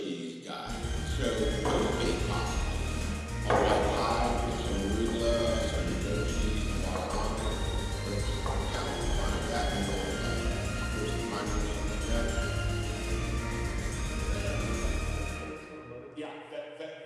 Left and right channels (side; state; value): both; identical; correlation 1.00